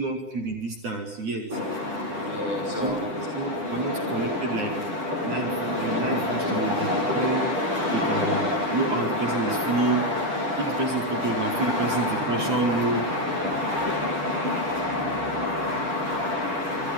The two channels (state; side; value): late; left; 9.9 ms